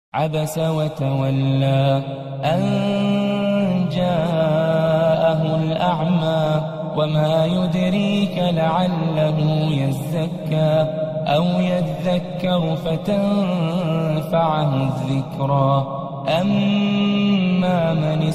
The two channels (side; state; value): both; identical; correlation 1.00